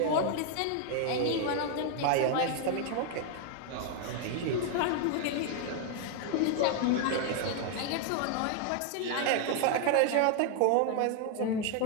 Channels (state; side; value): different; both; correlation 0.00